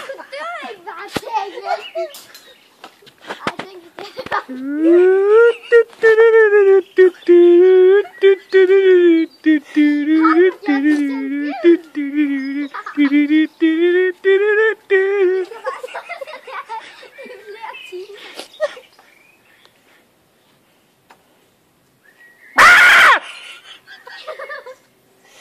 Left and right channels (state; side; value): identical; both; correlation 1.00